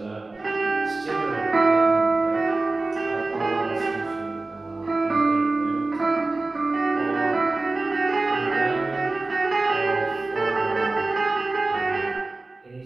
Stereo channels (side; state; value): left; quieter; 3.2 dB